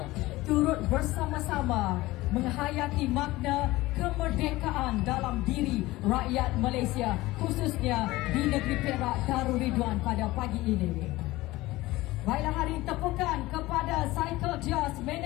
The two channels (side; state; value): right; quieter; 18.8 dB